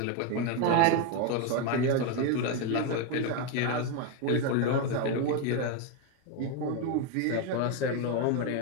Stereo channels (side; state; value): both; different; correlation 0.02